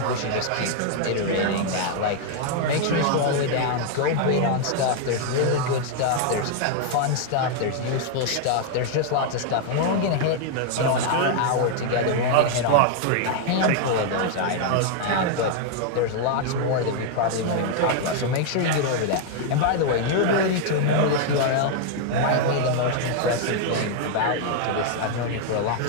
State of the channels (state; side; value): different; both; correlation 0.00